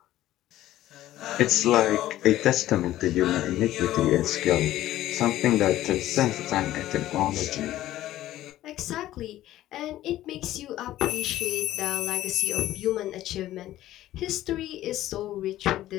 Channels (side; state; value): right; quieter; 14.2 dB